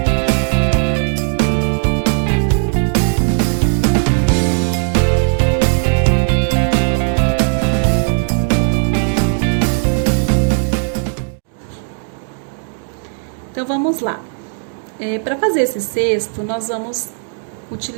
Então vamos lá. Para fazer esse cesto, nós vamos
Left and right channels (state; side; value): silent; left; digital silence